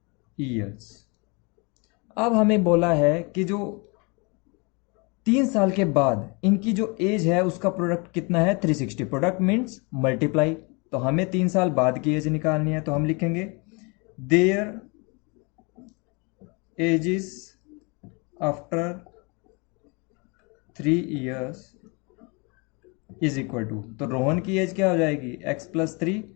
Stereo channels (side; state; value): right; quieter; 30.7 dB